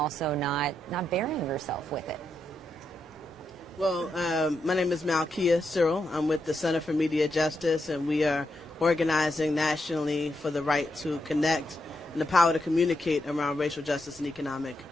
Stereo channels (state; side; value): normal; both; correlation 0.83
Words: not burying yourself with it? Well, my name is Malkia Cyril. I'm with the Center for Media Justice, and we are organizing nationally for the right to connect and the power to communicate around racial justice and economic